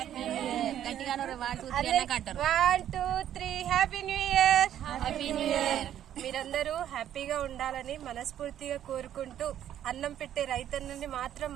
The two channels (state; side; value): quieter; left; 10.9 dB